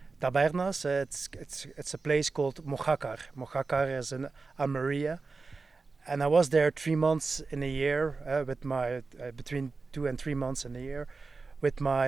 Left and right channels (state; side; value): quieter; left; 4.1 dB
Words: Tabernas. It's a place called Mojácar. Mojácar is in Almeria, and I was there 3 months in a year with my between 2 and 3 months in a year with